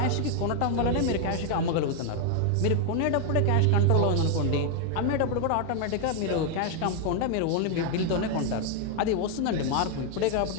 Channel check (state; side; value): different; both; correlation 0.00